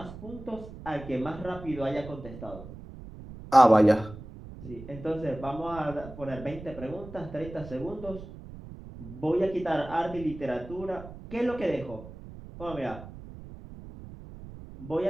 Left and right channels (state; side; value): noise; right; rumble, 14 dB below the sound